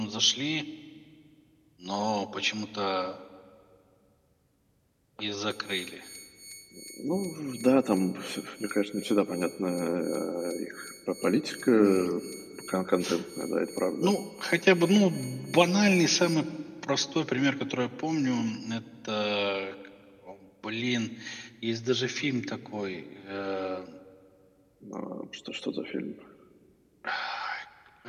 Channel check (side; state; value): both; identical; correlation 1.00